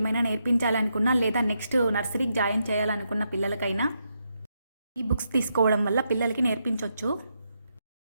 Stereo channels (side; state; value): both; inverted; correlation -0.82